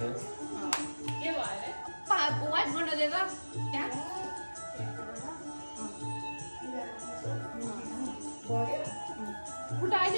के भयो रे वाइट गर्न दे त त्यहाँ उठा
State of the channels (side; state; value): both; inverted; correlation -1.00